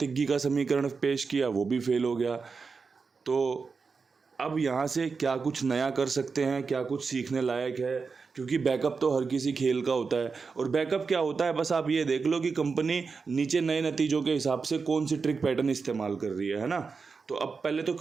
का समीकरण पेश किया, वो भी फेल हो गया। तो अब यहाँ से क्या कुछ नया कर सकते हैं, क्या कुछ सीखने लायक है, क्योंकि बैकअप तो हर किसी खेल का होता है। और बैकअप क्या होता है, बस आप ये देख लो कि कंपनी नीचे नए नतीजों के हिसाब से कौन सी ट्रिक पैटर्न इस्तेमाल कर रही है ना। तो अब पहले तो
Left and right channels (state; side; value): quieter; left; 4.9 dB